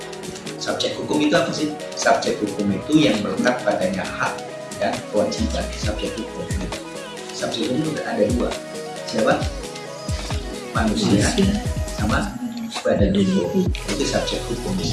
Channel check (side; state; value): both; identical; correlation 1.00